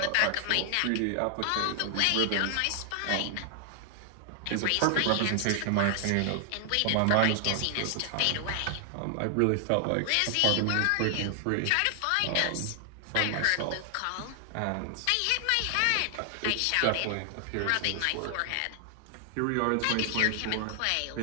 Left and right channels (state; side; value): different; both; correlation 0.00